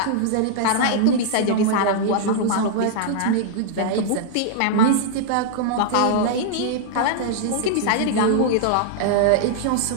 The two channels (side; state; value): both; different; correlation -0.01